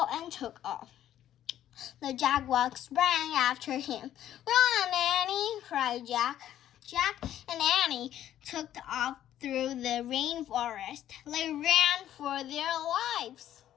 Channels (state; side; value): quieter; right; 11.7 dB